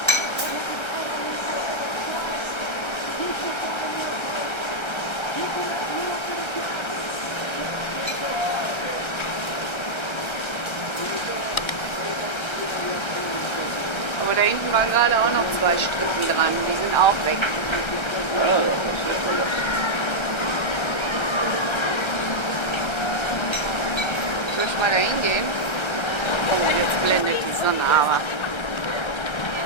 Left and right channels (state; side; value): late; right; 1.3 ms